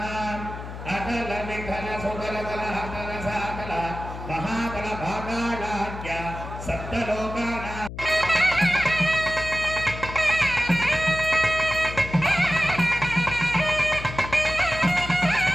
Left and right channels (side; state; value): left; noise; hum, 10 dB below the sound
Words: अतल विठल सुतल तल हतल सातल महातल भागालाख्य सप्तलोकानां